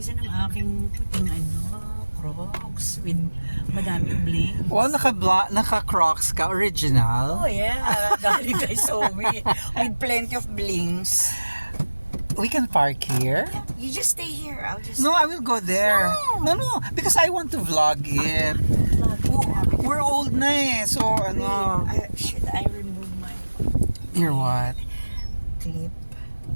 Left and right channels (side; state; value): both; inverted; correlation -1.00